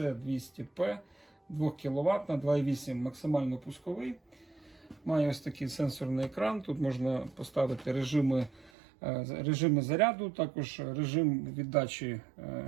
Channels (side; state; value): left; drops out; at 8.7 s